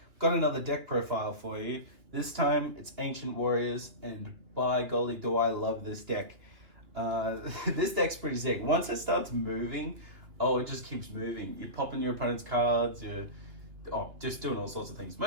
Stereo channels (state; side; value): late; left; 2.6 ms